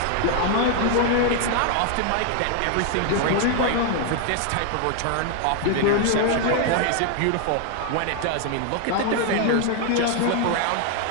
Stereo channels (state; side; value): different; both; correlation 0.00